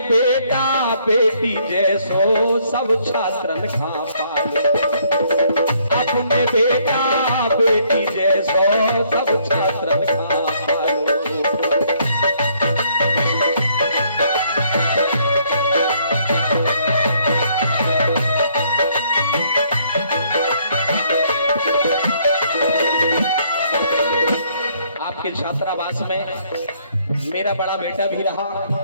बेटा बेटी जैसो सब छात्रन खा पालो। अपने बेटा बेटी जैसो सब छात्रन खा पालो। आपके छात्रावास में मेरा बड़ा बेटा भी रहा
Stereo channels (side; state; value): both; inverted; correlation -0.67